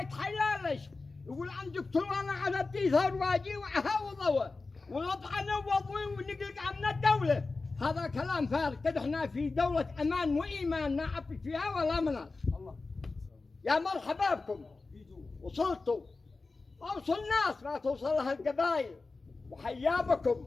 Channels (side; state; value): right; quieter; 3.8 dB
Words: يقول عن دكتور انا على الديثار واجي وضوى ونطعن وضوي ونقلق عن الدوله. هذا كلام فارغ، كده احنا في دولة امان وايمان ما عبي فيها ولا مناص. يا مرحبا بكم، وصلتوا اوصل الناس ما توصلها القبائل، وحيا بكم.